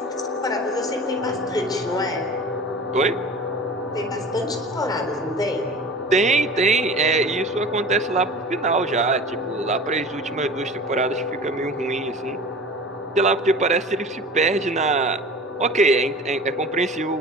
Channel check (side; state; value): both; normal; correlation 0.38